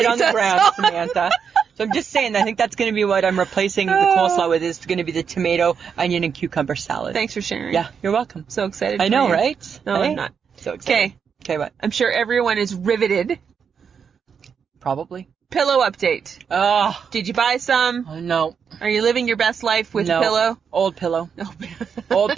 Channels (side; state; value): left; quieter; 6.7 dB